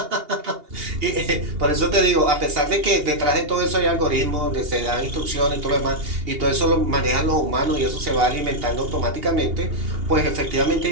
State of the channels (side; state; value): left; late; 2.8 ms